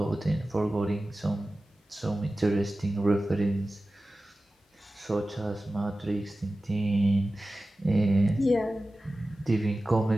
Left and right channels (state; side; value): normal; both; correlation 0.95